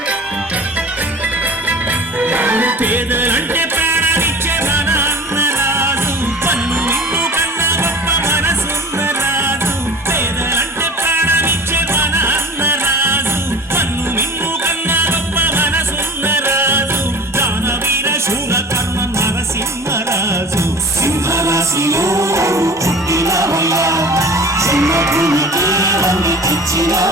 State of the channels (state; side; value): normal; both; correlation 0.39